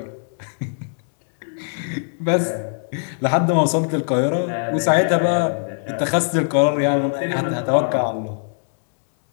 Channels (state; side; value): silent; right; 65 dB below the other